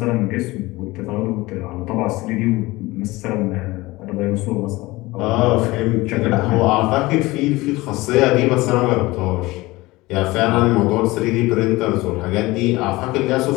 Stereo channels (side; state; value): right; quieter; 20.5 dB